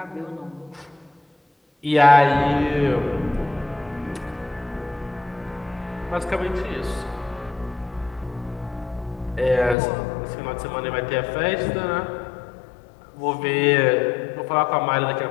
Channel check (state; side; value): drops out; right; at 9.8 s